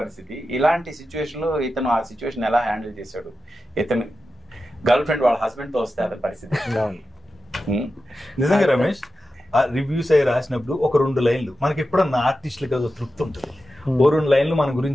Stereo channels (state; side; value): normal; both; correlation 0.92